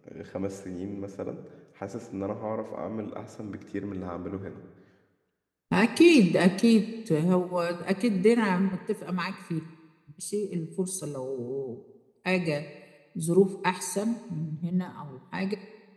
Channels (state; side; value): identical; both; correlation 1.00